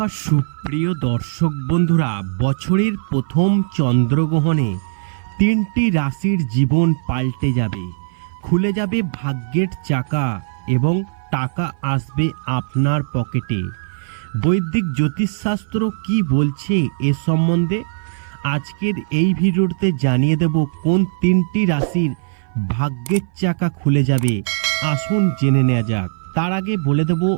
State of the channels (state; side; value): silent; left; 58 dB below the other